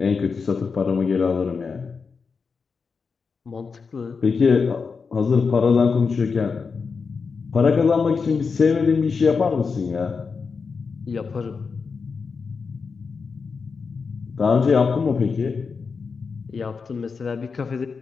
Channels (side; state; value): right; quieter; 5.2 dB